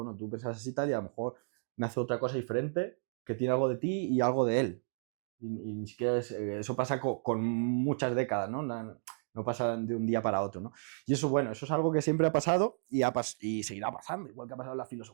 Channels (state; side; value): silent; left; digital silence